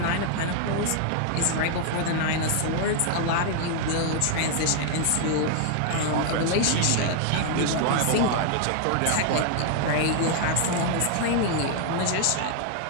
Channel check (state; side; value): different; both; correlation 0.00